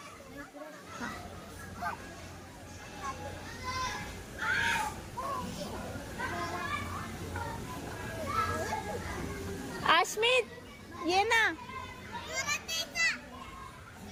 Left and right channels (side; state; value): both; identical; correlation 1.00